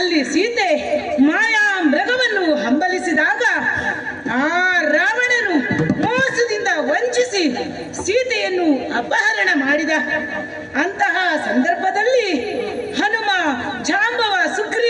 ಸೀತೆ ಮಾಯಾ ಮೃಗವನ್ನು ಹಂಬಲಿಸಿದಾಗ ಆ ರಾವಣನು ಮೋಸದಿಂದ ವಂಚಿಸಿ ಸೀತೆಯನ್ನು ಅಪಹರಣ ಮಾಡಿದ. ಅಂತಹ ಸಂದರ್ಭದಲ್ಲಿ ಹನುಮ, ಜಾಂಬವ,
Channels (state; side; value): identical; both; correlation 1.00